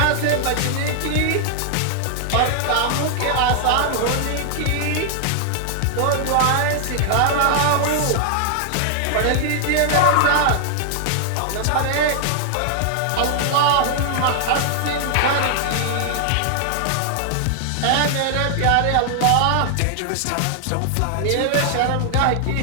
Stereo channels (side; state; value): both; different; correlation 0.00